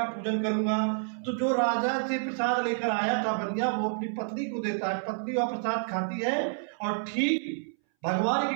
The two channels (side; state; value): left; silent; 59 dB below the other